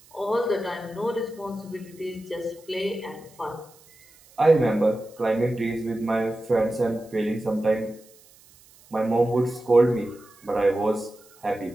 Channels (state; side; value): noise; right; hiss, 27 dB below the sound